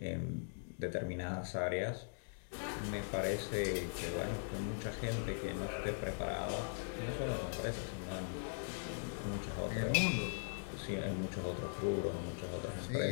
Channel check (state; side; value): silent; right; digital silence